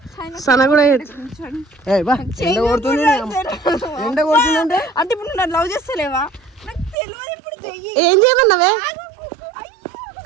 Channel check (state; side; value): drops out; left; at 7.0 s